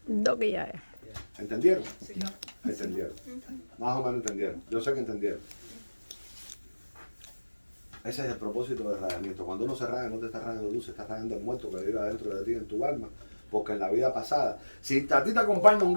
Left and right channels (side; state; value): both; inverted; correlation -1.00